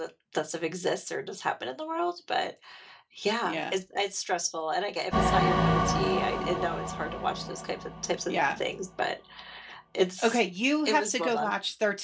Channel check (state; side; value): identical; both; correlation 1.00